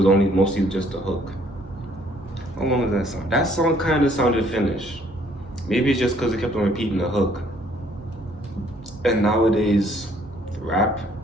only mostly just the hook. How long was that song? That song kind of sounded finished. Maybe it's just because it kept on repeating the hook. And nowadays, rap,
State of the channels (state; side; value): normal; both; correlation 0.62